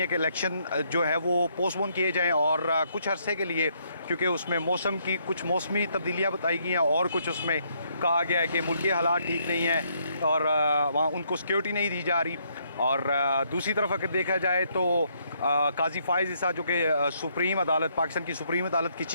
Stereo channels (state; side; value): inverted; both; correlation -0.72